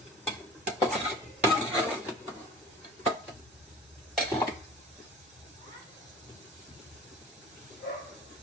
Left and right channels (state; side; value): normal; both; correlation 0.42